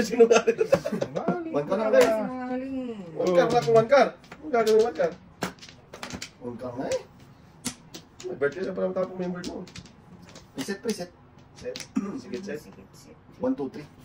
nga rin. One ka lang, talaga. pre. Sinungaling. One car na kung one car. Ang gagawin one car. One ka nga eh. May birthday na parang tapong member mo. Preset, preset. Set. Sige, set. Sikit, sikit. 1, 2, 3.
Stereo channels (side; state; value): both; identical; correlation 1.00